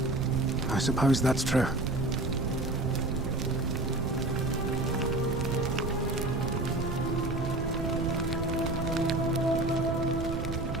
I suppose that's true.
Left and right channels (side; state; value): right; noise; rumble, 3 dB below the sound